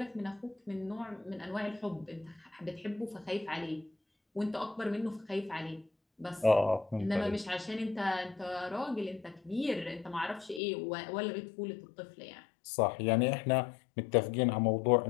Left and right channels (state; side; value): drops out; right; at 10.6 s